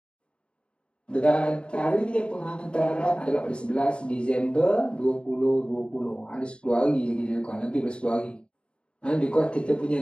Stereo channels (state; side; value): late; right; 0.054 ms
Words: Dan tarikh penghantaran adalah pada 11 Disember 2020. Ada 10 hari lagi dia lakukan, lebih dari 10 hari. Because kita punya